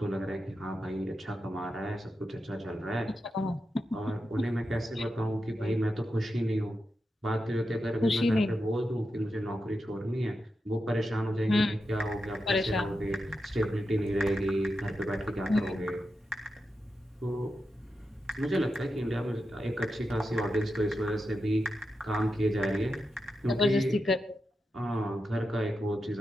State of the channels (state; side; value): normal; both; correlation 0.88